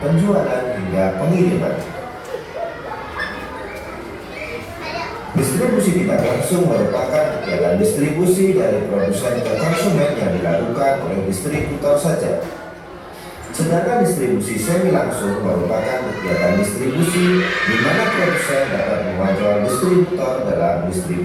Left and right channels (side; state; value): both; identical; correlation 1.00